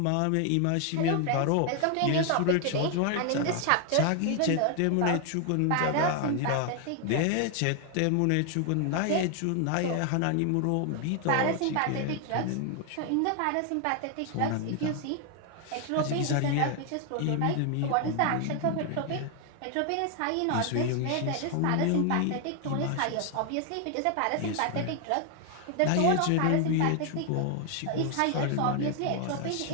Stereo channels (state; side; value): different; both; correlation 0.00